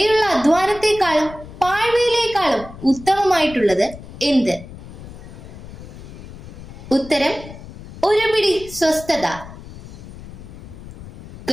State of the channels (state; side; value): noise; left; rumble, 15 dB below the sound